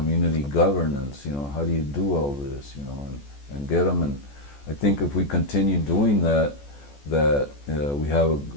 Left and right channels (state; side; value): late; right; 14 ms